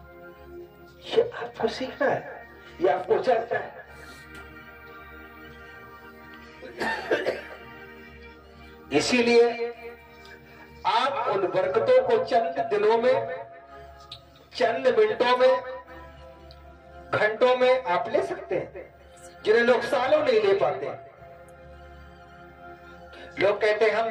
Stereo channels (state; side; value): identical; both; correlation 1.00